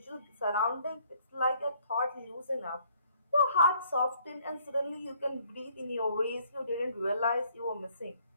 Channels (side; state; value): both; inverted; correlation -0.65